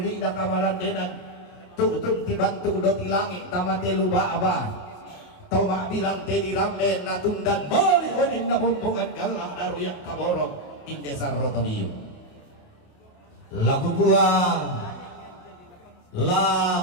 na kamaran denan tutun tibantu do tilangi tamate luba aba tau mak bilang tedi ramen natundan mali onin na bumbungan galang naruyang kaborok Indesar rotonio laku gua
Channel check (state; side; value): late; right; 28 ms